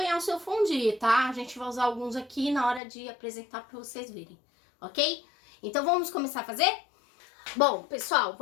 o seu fondue, tá? A gente vai usar alguns aqui na hora de apresentar para vocês verem, ok? Então vamos começar a fazer? Bom, pessoal,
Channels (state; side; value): drops out; right; at 2.8 s